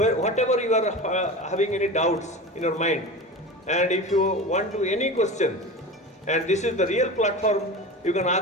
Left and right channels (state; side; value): normal; both; correlation 0.30